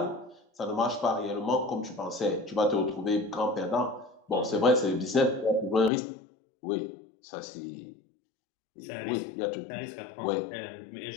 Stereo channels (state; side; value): drops out; right; at 5.9 s